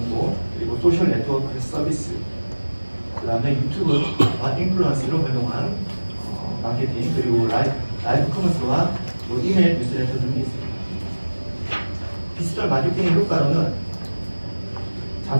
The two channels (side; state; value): both; inverted; correlation -1.00